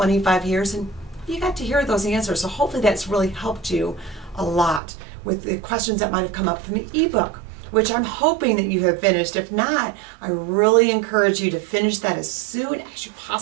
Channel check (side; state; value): left; drops out; at 4.8 s